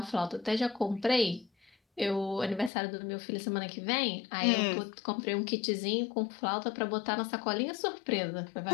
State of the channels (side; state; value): right; drops out; at 2.7 s